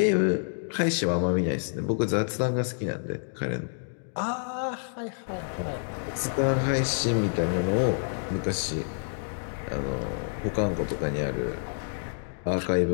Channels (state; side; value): silent; right; digital silence